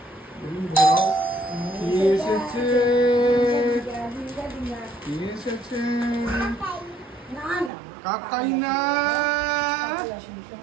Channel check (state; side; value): drops out; left; at 7.7 s